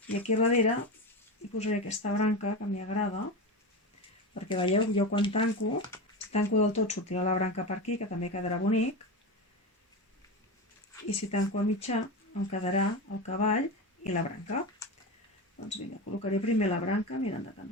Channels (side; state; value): both; normal; correlation 0.21